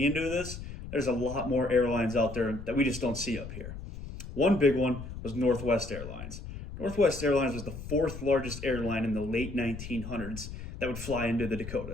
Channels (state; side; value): noise; left; rumble, 10 dB below the sound